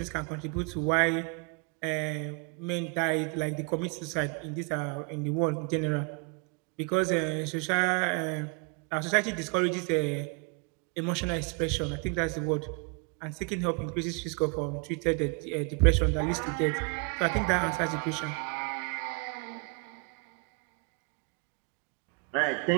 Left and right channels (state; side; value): quieter; left; 33.7 dB